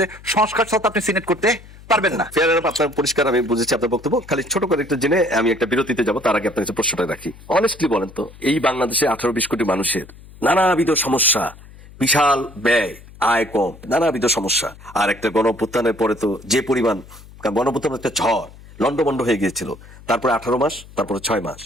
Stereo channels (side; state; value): left; noise; hum, 20 dB below the sound